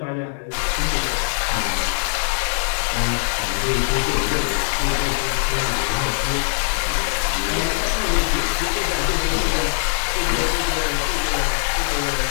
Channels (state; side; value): silent; right; digital silence